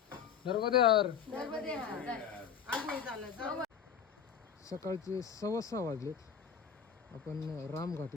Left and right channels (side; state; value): right; quieter; 7.5 dB